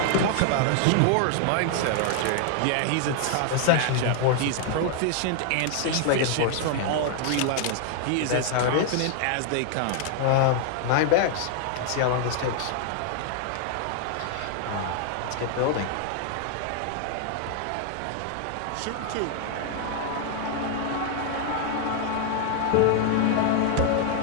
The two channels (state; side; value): different; both; correlation 0.00